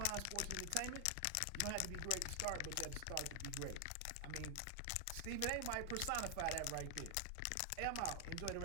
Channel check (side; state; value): both; different; correlation 0.00